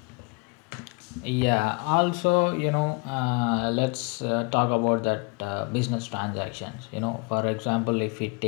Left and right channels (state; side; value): quieter; right; 30.0 dB